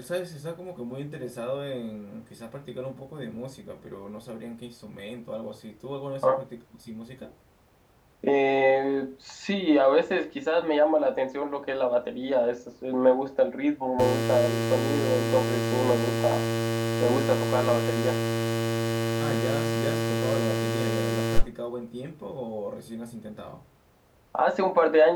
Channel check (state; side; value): identical; both; correlation 1.00